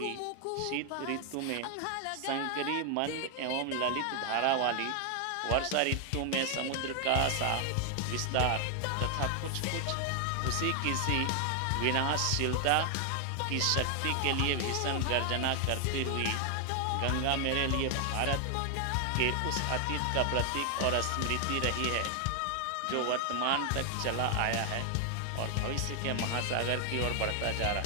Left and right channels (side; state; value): both; different; correlation 0.00